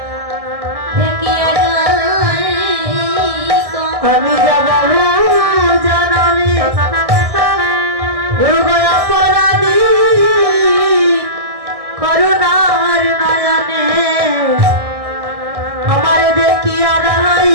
আমি যাব জানাবি গুরু গো অপরাধী করুণার নয়নে আমার দেখিয়া রাই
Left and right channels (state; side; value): late; left; 1.6 ms